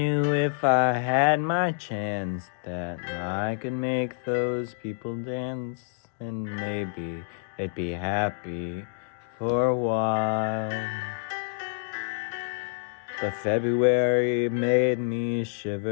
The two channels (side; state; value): right; silent; digital silence